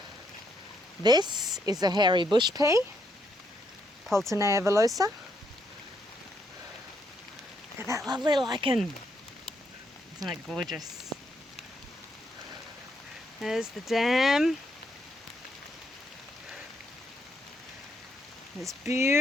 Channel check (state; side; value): normal; both; correlation 0.75